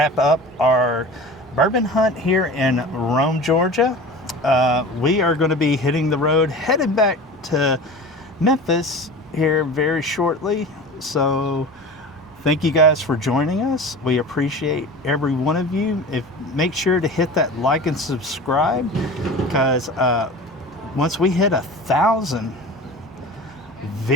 up our bourbon hunt here in Rome, Georgia. We are going to be hitting the road, headed back to Memphis here very shortly. So thank you guys for joining us. We appreciate every one of you. Make sure to hit that like and subscribe, because once we hit 1,000,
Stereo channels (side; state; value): both; normal; correlation 0.35